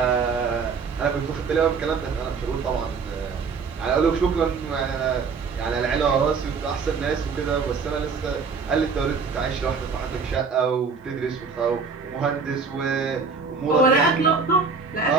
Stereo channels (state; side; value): quieter; left; 5.2 dB